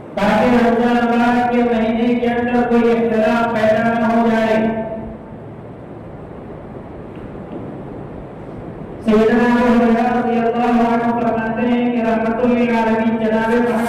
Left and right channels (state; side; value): identical; both; correlation 1.00